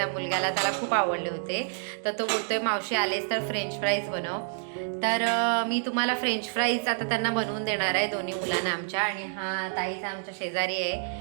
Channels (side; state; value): left; silent; digital silence